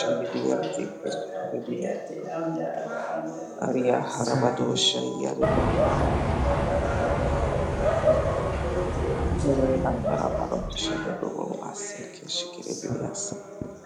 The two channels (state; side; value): identical; both; correlation 1.00